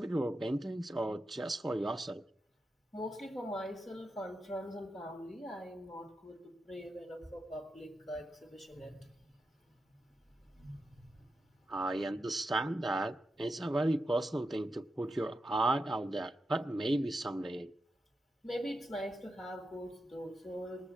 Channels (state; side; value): normal; both; correlation 0.88